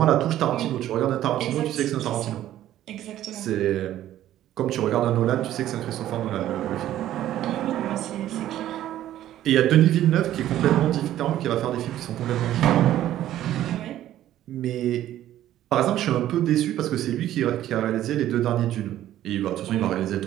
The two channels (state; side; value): quieter; left; 12.8 dB